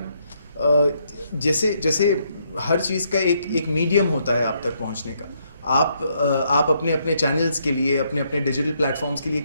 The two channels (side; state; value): both; inverted; correlation -0.74